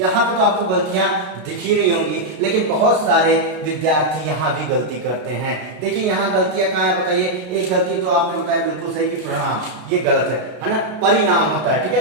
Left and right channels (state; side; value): late; left; 33 ms